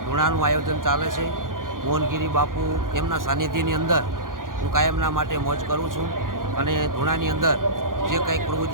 ધૂણાનું આયોજન ચાલે છે. મોહનગીરી બાપુ એમના સાનિધ્યની અંદર હું કાયમના માટે મોજ કરું છું અને ધૂણાની અંદર જે કંઈક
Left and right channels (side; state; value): left; late; 0.90 ms